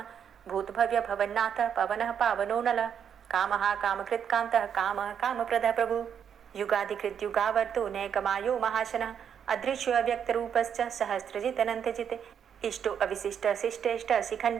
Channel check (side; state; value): left; quieter; 8.1 dB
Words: भूतभव्य भवन्नाथ पवनः पावनो नलः कामः कामकृत्कान्तः कामः कामप्रदः प्रभु युगाधिकृत्युगावर्तो नैकमायो महाशनः अदृश्यो अव्यक्तरूपश्च सहस्रजित् अनन्तजित् इष्टो अविशिष्ट शिष्टेष्ट